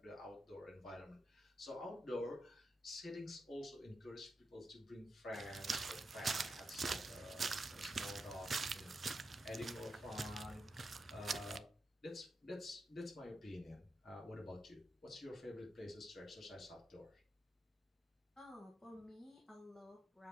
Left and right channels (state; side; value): normal; both; correlation 0.86